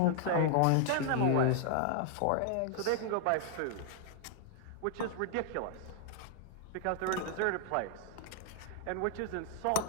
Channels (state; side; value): different; both; correlation -0.01